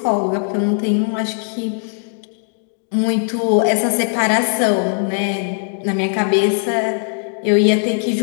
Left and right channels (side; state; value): right; silent; 64 dB below the other